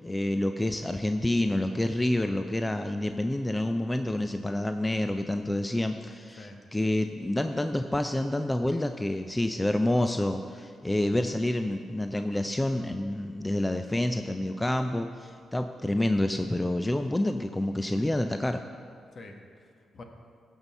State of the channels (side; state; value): both; normal; correlation 0.98